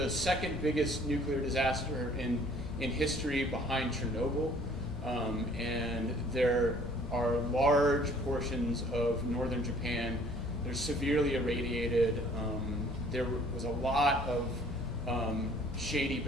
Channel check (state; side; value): normal; both; correlation 0.56